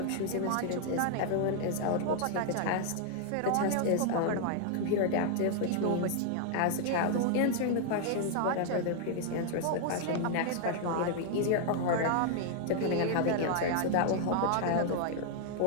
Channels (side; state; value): both; different; correlation 0.00